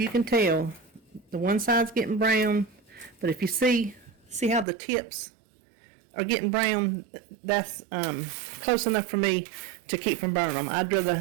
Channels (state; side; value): drops out; left; at 4.7 s